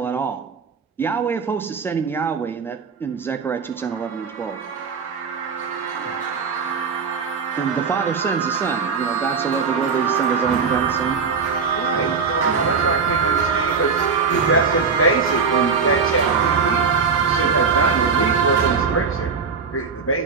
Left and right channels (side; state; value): left; quieter; 5.4 dB